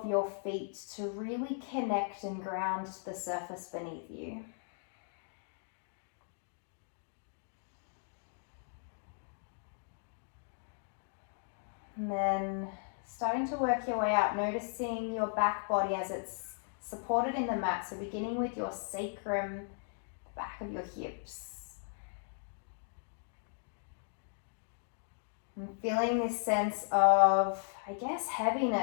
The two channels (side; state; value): right; silent; digital silence